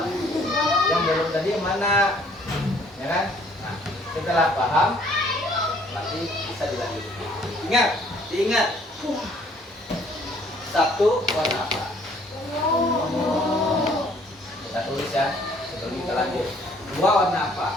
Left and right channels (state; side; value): normal; both; correlation 0.60